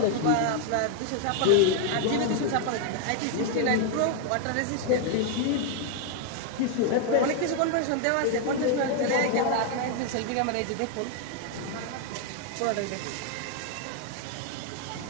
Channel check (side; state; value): both; different; correlation 0.00